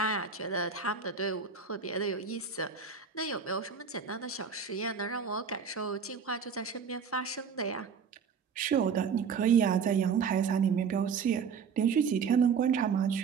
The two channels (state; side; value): quieter; left; 6.2 dB